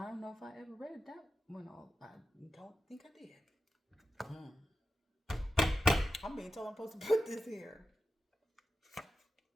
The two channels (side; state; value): both; normal; correlation 0.90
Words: don't know if I ever read that one. I don't think I did. I'm being told I'm supposed to put this here.